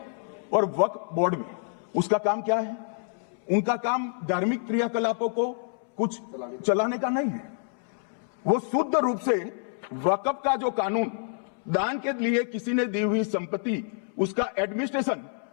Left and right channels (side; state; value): right; silent; 60 dB below the other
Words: और वक्फ बोर्ड में। उसका काम क्या है? उनका काम धार्मिक क्रियाकलापों को कुछ चलाने का नहीं है। वो शुद्ध रूप से वक्फ का जो कानून, दान के लिए किसी ने दी हुई संपत्ति, उसका एडमिनिस्ट्रेशन